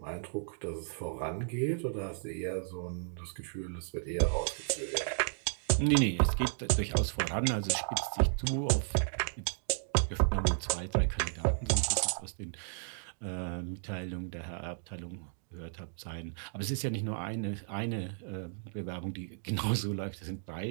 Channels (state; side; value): silent; left; digital silence